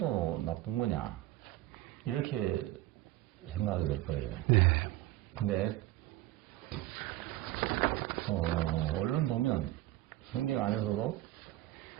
나쁜 거냐 이렇게 생각이 될 거예요. 네. 근데 얼른 보면 성경 안에서도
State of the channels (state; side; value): quieter; left; 16.3 dB